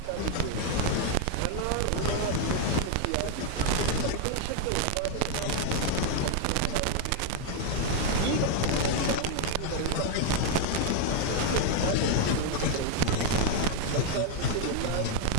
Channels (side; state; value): both; different; correlation 0.00